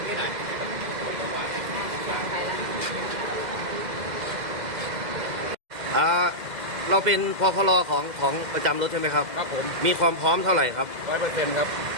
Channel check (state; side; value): late; left; 2.0 ms